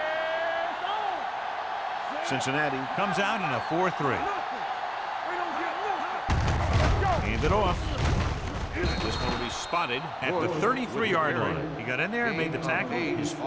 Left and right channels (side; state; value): both; identical; correlation 1.00